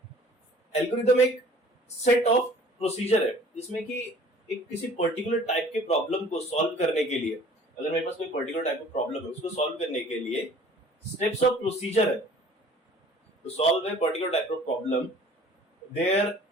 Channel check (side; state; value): both; normal; correlation 0.50